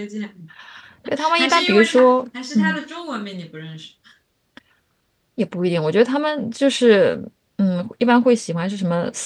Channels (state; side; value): identical; both; correlation 1.00